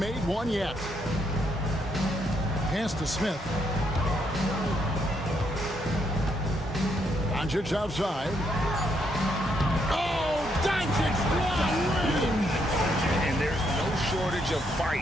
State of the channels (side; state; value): both; normal; correlation 0.75